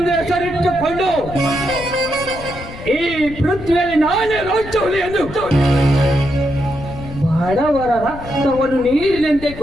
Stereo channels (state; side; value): noise; left; rumble, 13 dB below the sound